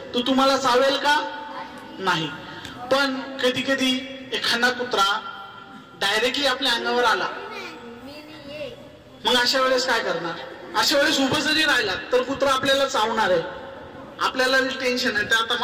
तो तुम्हाला चावेल का? नाही. पण कधी कधी एखादा कुत्रा डायरेक्टली आपल्या अंगावर आला, मग अशा वेळेस काय करणार? अशा वेळेस उभं जरी राहिला तर कुत्रा आपल्याला चावणार आहे. आपल्याला टेन्शन आहे, तर आता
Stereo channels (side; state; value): both; identical; correlation 1.00